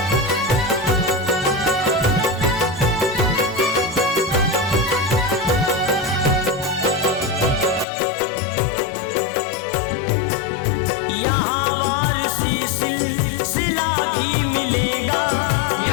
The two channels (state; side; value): drops out; right; at 7.9 s